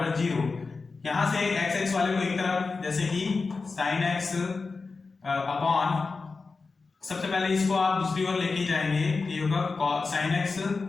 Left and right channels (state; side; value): quieter; right; 4.2 dB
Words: 0। यहां से x वाले को एक तरफ, जैसे कि sin x अपॉन, सबसे पहले इसको आप दूसरी ओर लेके जाएंगे, ये होगा sin x